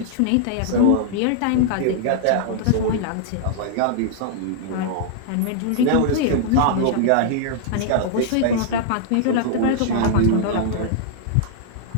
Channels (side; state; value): both; different; correlation -0.01